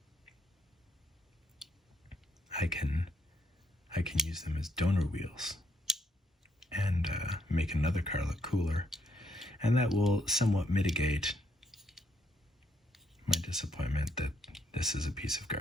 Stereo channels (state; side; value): normal; both; correlation 0.73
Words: I can use them as donor wheels and make another car look cooler, and that will somewhat mitigate my disappointment that this is a piece of